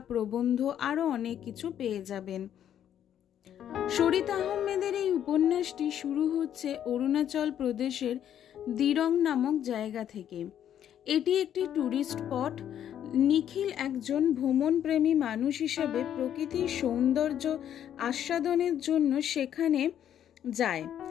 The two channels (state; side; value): quieter; right; 10.1 dB